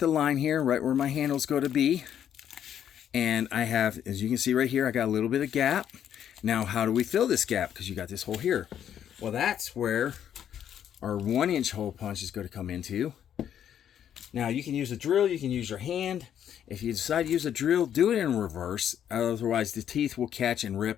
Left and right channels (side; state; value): right; quieter; 9.6 dB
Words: line here, right where my handle's going to be. And I have, as you can see right here, I got a little bit of gap. Now, how do we fill this gap? Because you got this hole here. Well, that's where our 1 inch hole punch is going to come into. Now, you can use a drill, you can use your hand. If you decide to use a drill, do it in reverse. Otherwise, the teeth will catch and